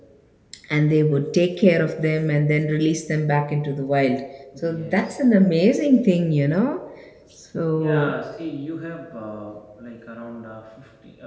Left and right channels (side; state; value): both; identical; correlation 1.00